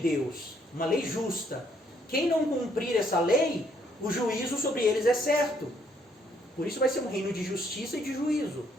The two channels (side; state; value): both; normal; correlation 0.68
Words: uma lei justa. Quem não cumprir essa lei, o juízo sobre eles é certo. Por isso vai ser um reino de justiça e de juízo.